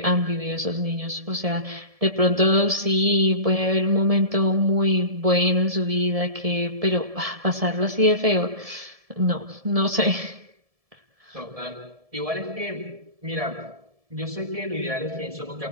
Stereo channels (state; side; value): late; left; 1.7 ms